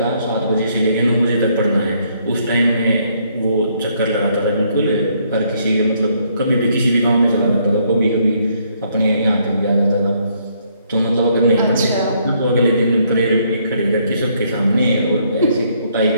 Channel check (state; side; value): inverted; both; correlation -0.69